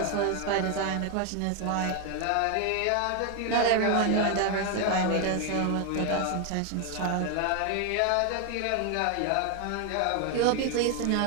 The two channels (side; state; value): both; different; correlation 0.01